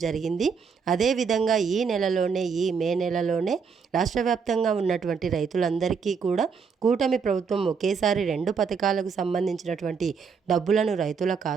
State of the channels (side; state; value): left; quieter; 5.9 dB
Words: జరిగింది. అదేవిధంగా ఈ మే నెలలోనే రాష్ట్ర వ్యాప్తంగా ఉన్నటువంటి రైతులందరికీ కూడా కూటమి ప్రభుత్వం ఒకేసారి 2 పథకాలకు సంబంధించినటువంటి డబ్బులను రైతుల